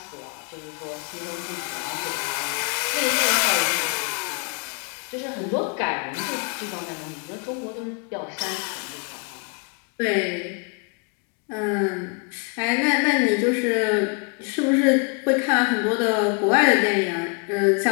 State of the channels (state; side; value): quieter; right; 36.0 dB